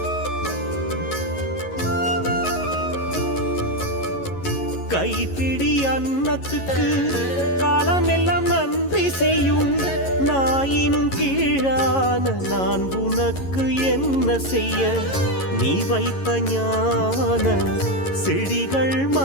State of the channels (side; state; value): right; late; 11 ms